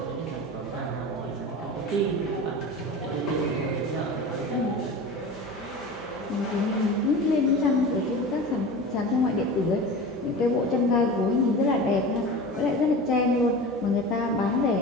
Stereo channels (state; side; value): normal; both; correlation 0.32